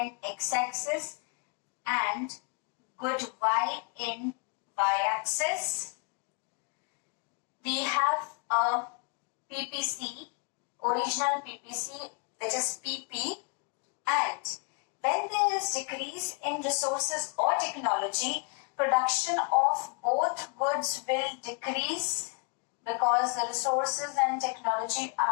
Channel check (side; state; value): right; quieter; 36.3 dB